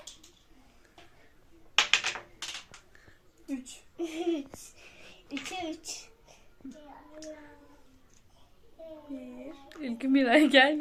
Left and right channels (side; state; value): both; identical; correlation 1.00